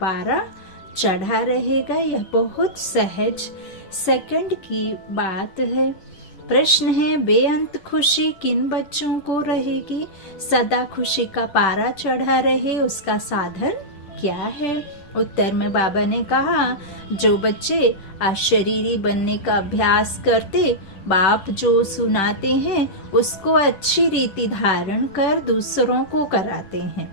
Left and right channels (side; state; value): right; late; 10 ms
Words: चढ़ा रहेगा। यह बहुत सहज सेकंड की बात है। प्रश्न है, बेअंत खुशी किन बच्चों को रहेगी? सदा खुशी का पारा चढ़ा रहे उसका साधन क्या है? उत्तर में बाबा ने कहा, जो बच्चे अशरीरी बनने का अभ्यास करते, बाप जो सुनाते हैं उसको अच्छी रीति धारण कर दूसरों को कराते हैं,